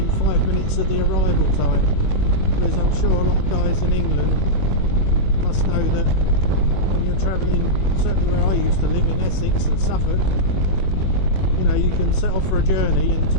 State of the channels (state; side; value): late; right; 21 ms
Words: 5 minutes of the arrival time. Because I'm sure a lot of guys in England must know that when you're travelling, certainly where I used to live in Essex and Suffolk, you know, you can set off for a journey and to